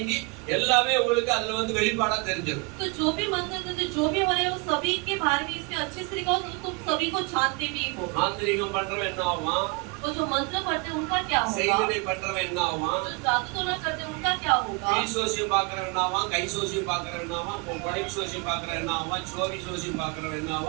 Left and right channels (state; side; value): quieter; left; 29.7 dB